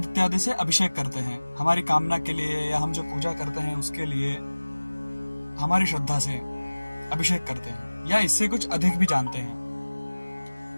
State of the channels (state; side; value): inverted; both; correlation -1.00